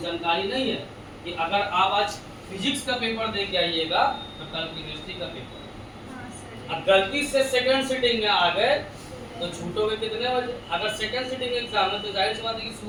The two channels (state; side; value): identical; both; correlation 1.00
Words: जानकारी नहीं है कि अगर आप आज फिजिक्स का पेपर दे के आइएगा तो कल केमिस्ट्री का पेपर, अब गलती से सेकंड सीटिंग में आ गए तो छूटोगे कितने बजे। अगर सेकंड सीटिंग एग्जाम है तो जाहिर सी बात है कि